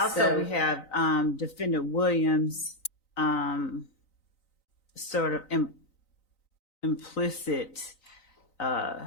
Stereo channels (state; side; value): late; right; 3.9 ms